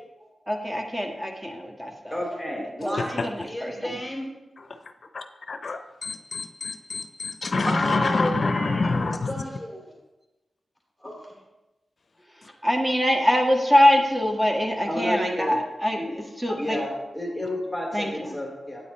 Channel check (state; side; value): normal; both; correlation 0.95